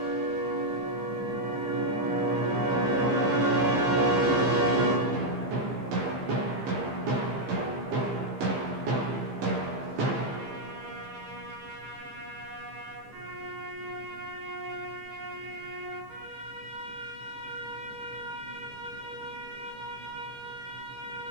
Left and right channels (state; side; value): late; left; 15 ms